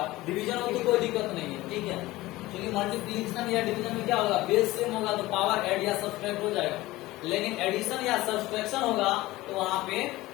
डिवीजन हो तो कोई दिक्कत नहीं है। ठीक है, क्योंकि मल्टीप्लिकेशन या डिवीजन में क्या होगा, बेस सेम होगा तो पावर ऐड या सब्ट्रैक्ट हो जाएगा, लेकिन एडिशन या सब्ट्रैक्शन होगा तो वहां पे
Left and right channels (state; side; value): quieter; right; 18.3 dB